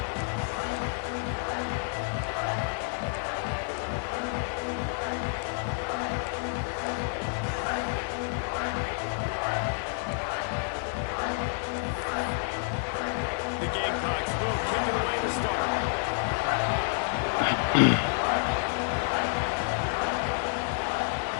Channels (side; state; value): right; silent; 58 dB below the other